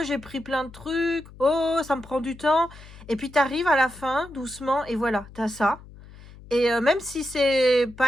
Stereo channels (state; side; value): noise; left; hum, 19 dB below the sound